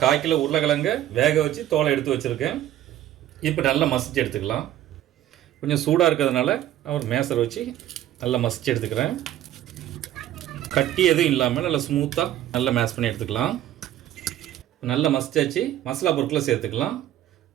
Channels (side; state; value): left; quieter; 12.7 dB